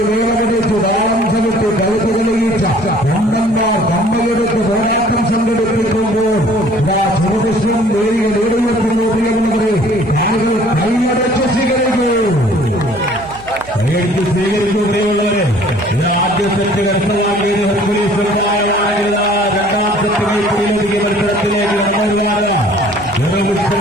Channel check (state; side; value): noise; right; hum, 20 dB below the sound